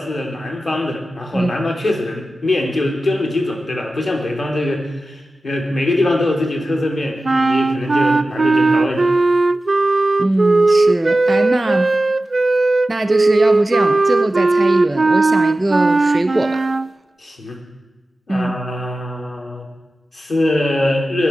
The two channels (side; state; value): both; normal; correlation 0.95